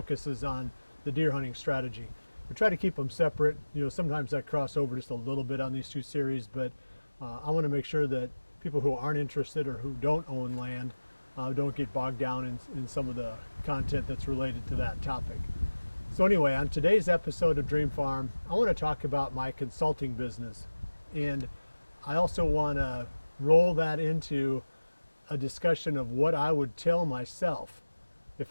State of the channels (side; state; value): both; inverted; correlation -1.00